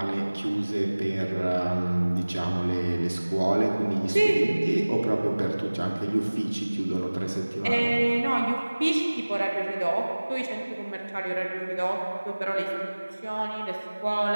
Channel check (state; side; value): inverted; both; correlation -1.00